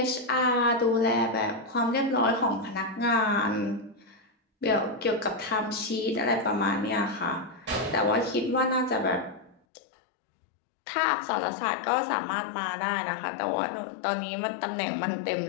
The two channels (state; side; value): drops out; right; at 9.6 s